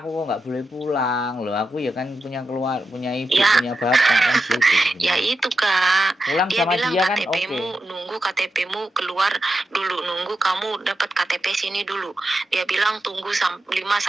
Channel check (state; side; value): normal; both; correlation 0.89